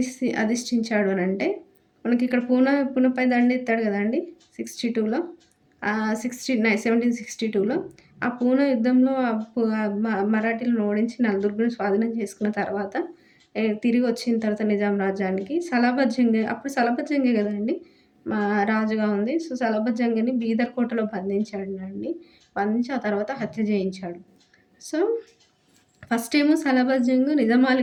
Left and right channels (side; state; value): both; identical; correlation 1.00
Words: అధిష్ఠించాడు అనంటే, మనకి ఇక్కడ పూనపై దండెత్తాడు గదండీ! 62లో 1762లో ఆ పూనా యుద్ధంలో మరాఠీలను ఓడించి నలదుర్గను స్వాధీనం చేసుకున్న తర్వాత తిరిగి వచ్చిన తర్వాత నిజాం రాజ్యానికి సలాబత్ జంగ్ అప్పుడు సలాబత్ జంగే గదండీ! రాజుగా ఉంది. సో, సలాబత్ జంగ్‌ని బీదర్ కోటలో బంధించాడండి. బంధించి ఆ తర్వాత హత్య చేయించాడు. సో, ఫస్ట్ ఏమో సలాబత్ జంగ్ నిజాం